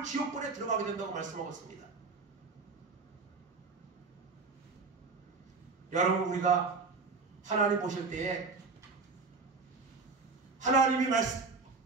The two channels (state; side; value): quieter; left; 4.3 dB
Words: 지옥불에 들어가게 된다고 말씀하셨습니다. 여러분, 우리가 하나님 보실 때에 하나님이